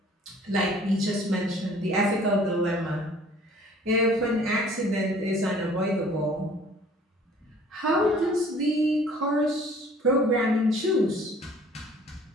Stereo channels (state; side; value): normal; both; correlation 0.53